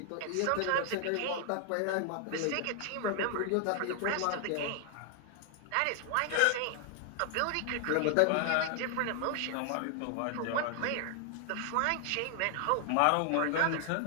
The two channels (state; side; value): different; both; correlation 0.00